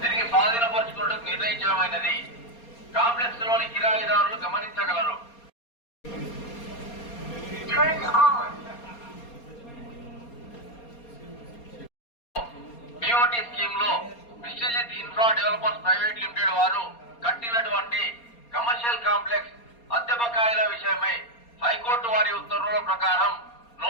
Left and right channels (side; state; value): right; late; 4.3 ms